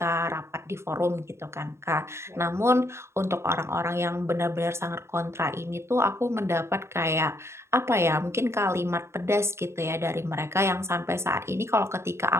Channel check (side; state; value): left; late; 0.13 ms